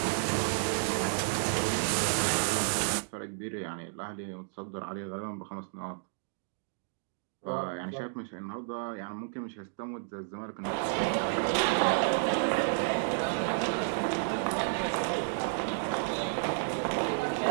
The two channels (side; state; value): left; silent; digital silence